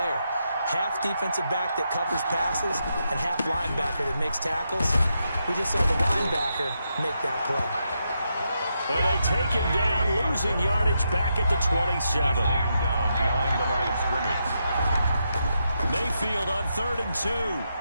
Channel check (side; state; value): both; inverted; correlation -0.83